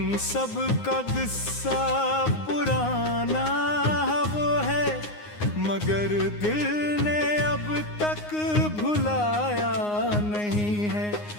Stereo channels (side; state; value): right; late; 9.6 ms